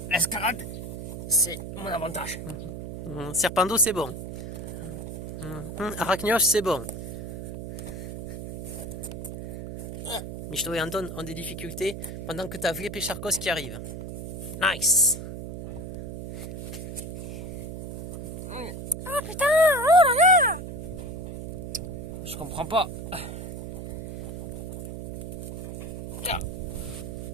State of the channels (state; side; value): noise; right; hum, 7 dB below the sound